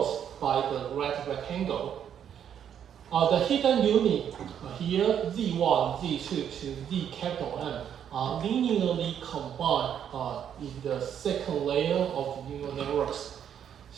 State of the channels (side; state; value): left; quieter; 9.0 dB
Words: by the right rectangle. The hidden unit here, Z1, Z2 to Z capital N, are linearly combined in the second layer of neural networks.